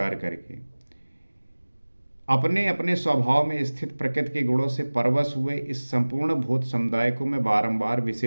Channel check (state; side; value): inverted; both; correlation -1.00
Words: करके अपने अपने स्वभाव में स्थित प्रकृति के गुणों से परवश हुए इस संपूर्ण भूत समुदाय को मैं बारंबार